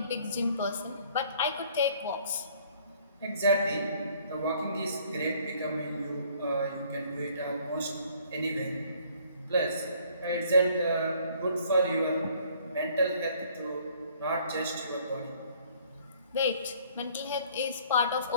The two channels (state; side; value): inverted; both; correlation -0.59